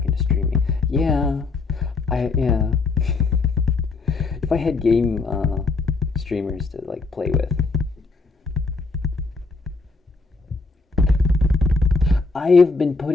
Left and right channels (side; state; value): right; quieter; 4.0 dB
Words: into streaming. Yeah, yeah. If I had game streamers to like play with. I've been